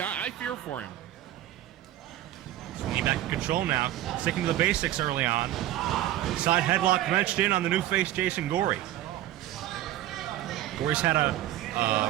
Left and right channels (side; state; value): left; quieter; 13.8 dB